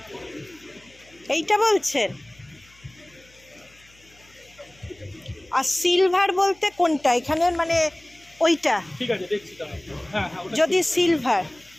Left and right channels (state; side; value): noise; left; hum, 29 dB below the sound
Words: এইটা বলছেন? আর সিলভার বলতে কোনটা এখানে, মানে ওইটা? ঠিক আছে, দেখছি তাহলে। হ্যাঁ হ্যাঁ, ওটা যদি সিলভার,